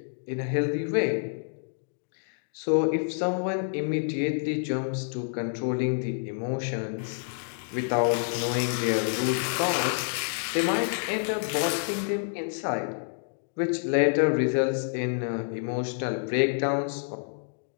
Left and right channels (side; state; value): right; silent; digital silence